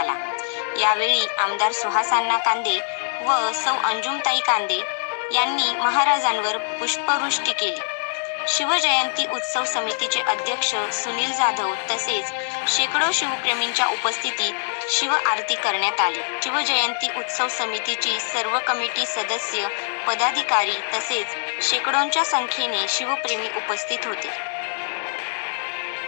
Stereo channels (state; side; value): silent; right; digital silence